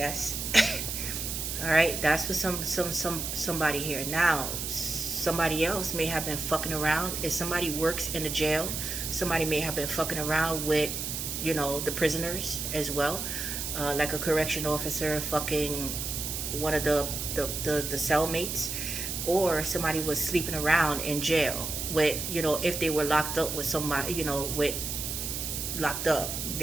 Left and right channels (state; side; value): noise; right; hiss, 4 dB below the sound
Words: All right, that's for somebody here. Now, somebody else may have been fucking around. If somebody works in the jail, somebody may have been fucking around with, you know, the prisoners as well, like a correction officer fucking one of the cellmates, or somebody was sleeping around in jail with, you know, if they were locked up with somebody, you know, locked up,